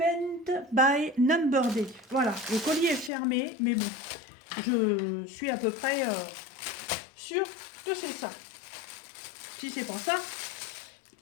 by Number Day. Voilà, le colis est fermé, mais bon, je suis à peu près sûre que c'est ça. Si c'est pas ça,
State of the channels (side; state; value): right; drops out; at 3.1 s